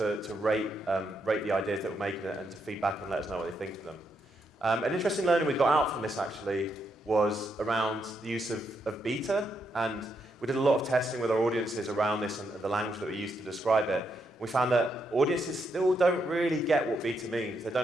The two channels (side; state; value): both; normal; correlation 0.79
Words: rate the ideas that we're making and to feedback and let us know what they think of them. An interesting learning we got out from this actually was around the use of beta, and we did a lot of testing with our audiences around this and the language that we used to describe it. We found that audiences still don't really get what beta means. They